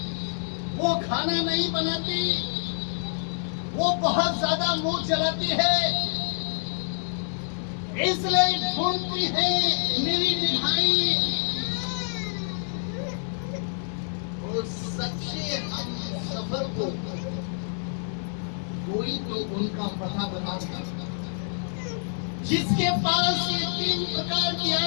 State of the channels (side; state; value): right; silent; digital silence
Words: वो खाना नहीं बनाती, वो बहुत ज्यादा मुंह चलाती है। इसलिए ढूंढती है मेरी निगाहें उस सच्चे हम सफर को। कोई तो उनका पता बताता, जिसके पास ये 3 प्रकार की